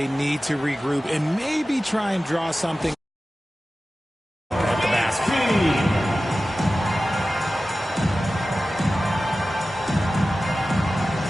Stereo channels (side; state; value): both; normal; correlation 0.95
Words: need to regroup and maybe try and draw something at the basket.